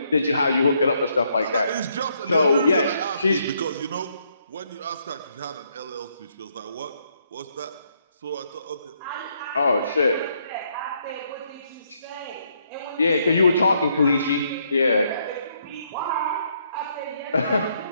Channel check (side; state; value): both; inverted; correlation -0.73